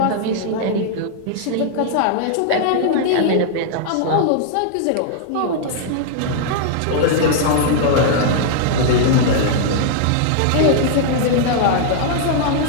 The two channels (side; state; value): both; different; correlation -0.01